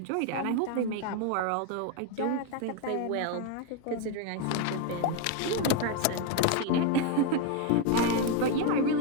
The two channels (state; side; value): different; both; correlation 0.01